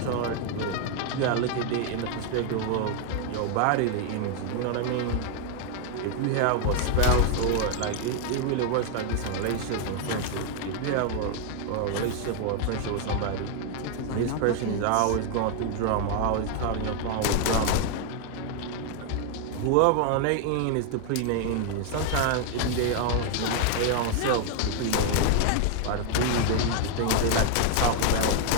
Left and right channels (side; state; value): both; different; correlation 0.00